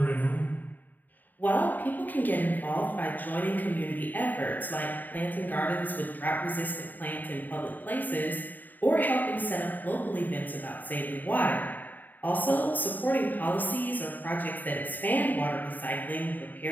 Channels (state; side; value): late; right; 0.087 ms